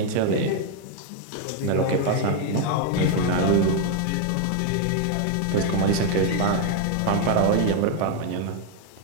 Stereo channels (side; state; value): both; different; correlation 0.00